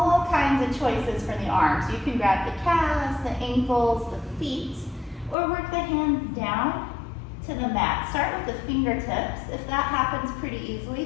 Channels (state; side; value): drops out; right; at 5.4 s